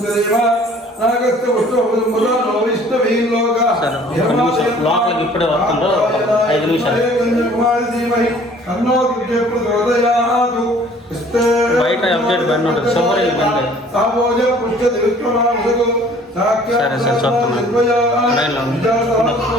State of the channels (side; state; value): both; normal; correlation 0.53